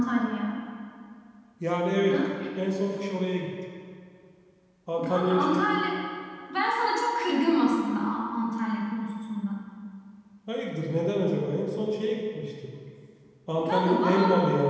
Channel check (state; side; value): identical; both; correlation 1.00